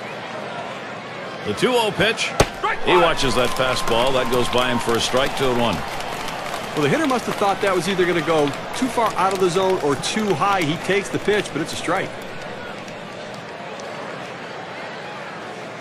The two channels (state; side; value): identical; both; correlation 1.00